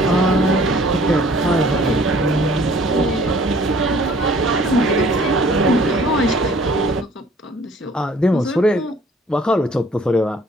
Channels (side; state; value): both; normal; correlation 0.55